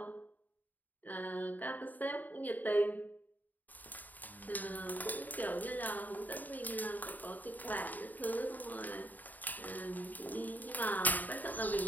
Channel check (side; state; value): right; late; 0.084 ms